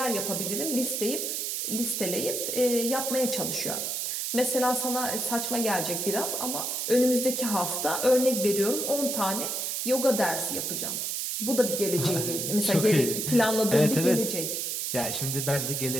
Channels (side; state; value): right; noise; hiss, 2 dB below the sound